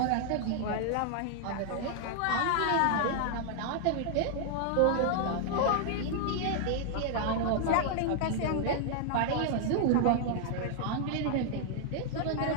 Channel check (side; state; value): both; different; correlation -0.01